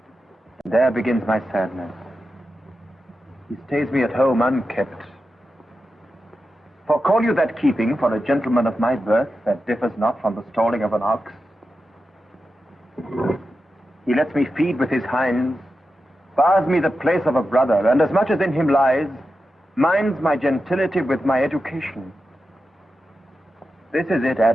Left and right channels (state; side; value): normal; both; correlation 0.91